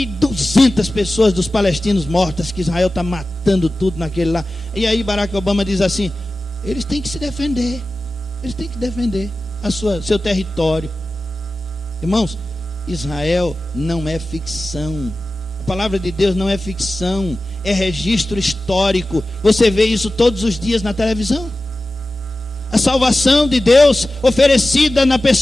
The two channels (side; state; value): both; normal; correlation 0.95